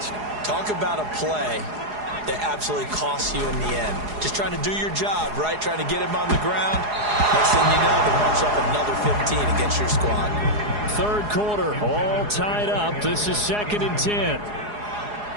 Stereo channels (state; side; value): late; left; 4.8 ms